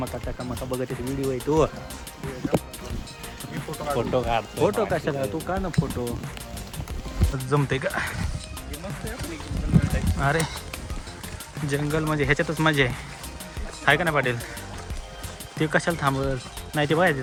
त्या मका बघत व्हिडिओ आहे तू फोटो काढ फोटो कशाला तू का ना फोटो जमते का अरे जंगल म्हणजे ह्याच्यातच मजा आहे का ना पाटील ते कशाला थांबल नाही ते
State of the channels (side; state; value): both; identical; correlation 1.00